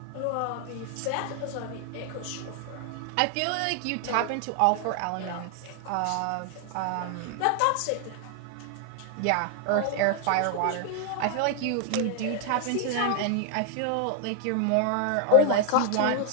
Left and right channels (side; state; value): both; different; correlation 0.00